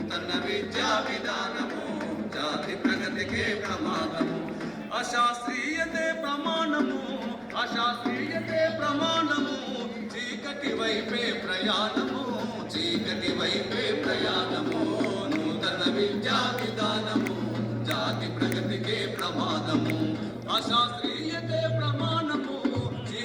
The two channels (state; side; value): identical; both; correlation 1.00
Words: జాతి ప్రగతికే ప్రమాదము అశాస్త్రీయతే ప్రమాణము అశాస్త్రీయతే ప్రమాణము చీకటి వైపే ప్రయాణము చీకటి వైపే ప్రయాణము నూతన విద్యా విధానము జాతి ప్రగతికే ప్రమాదము అశాస్త్రీయతే ప్రమాణము